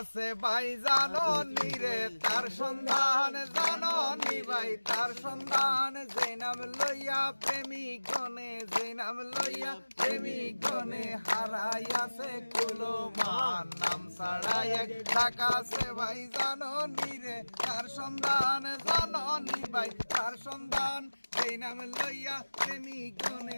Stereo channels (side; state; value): both; inverted; correlation -1.00